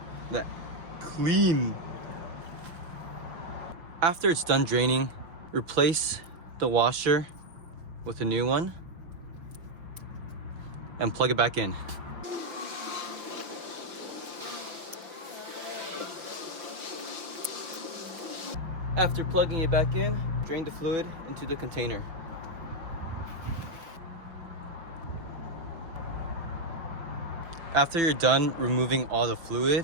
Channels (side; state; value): left; late; 5.8 ms